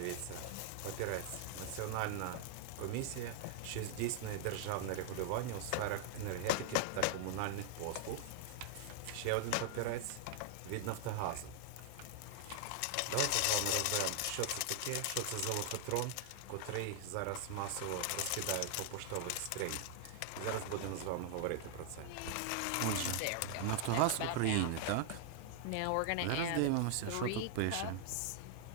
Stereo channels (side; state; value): both; different; correlation 0.00